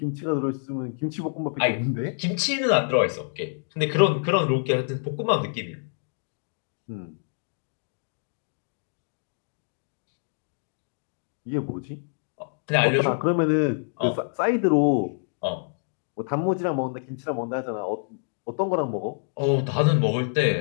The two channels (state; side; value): silent; right; digital silence